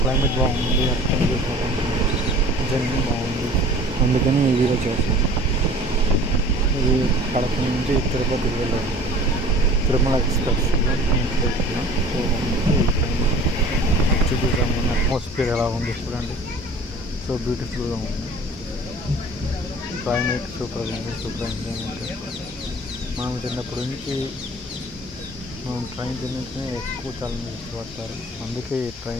క్లైమేట్ బాగుంది, జర్నీ బాగుంది, అందుకని ఈ వీడియో చేస్తాను. ఇది కడప నుంచి తిరుపతికి వెళ్ళాను. తిరుమల ఎక్స్ప్రెస్ చూపిస్తాము. అట్మాస్ఫియర్ ఎలా ఉంది చూడండి. సో బ్యూటిఫుల్గా ఉంది. క్లైమేట్ సూపర్గా ఉంది. Super enjoyment. మనం చిన్నప్పటి నుంచి మనం ట్రైన్ జర్నీనే ఎక్కువ చాలా ఇష్టపడతారు. అందుకే ఈ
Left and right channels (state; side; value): normal; both; correlation 0.46